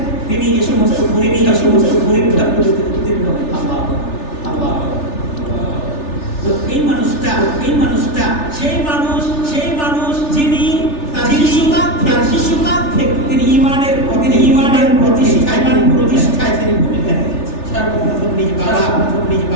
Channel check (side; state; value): right; late; 3.4 ms